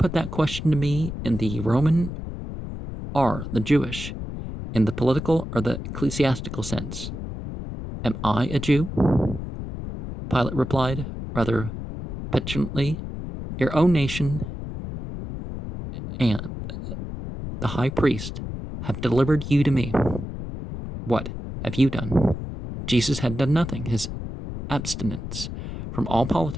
that question to me in the Roman or the Jewish, in the political or the ecclesiastical sense? Am I a Jew?" Pilate replied, rather petulantly, "Your own nation and the high priest have delivered you to me. What have you done?" Jesus had done nothing. His abstinence from all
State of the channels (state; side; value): noise; left; rumble, 7 dB below the sound